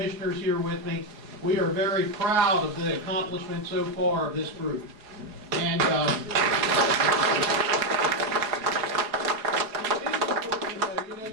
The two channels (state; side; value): late; left; 4.7 ms